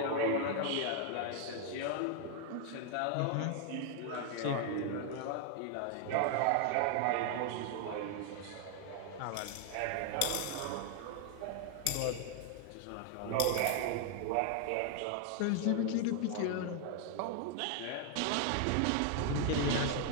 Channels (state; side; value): different; both; correlation 0.00